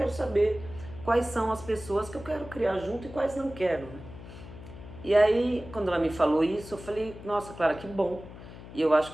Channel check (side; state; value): left; noise; hum, 15 dB below the sound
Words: saber quais são as pessoas que eu quero criar junto e quais não quero, né? E aí, quando ela me falou isso, eu falei, nossa, Clara, que bom. E eu acho